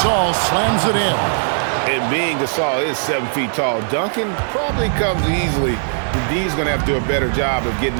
slams it in. And being Gasol is 7 feet tall, dunking probably comes easily. D's going to have to do a better job of getting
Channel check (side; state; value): left; silent; digital silence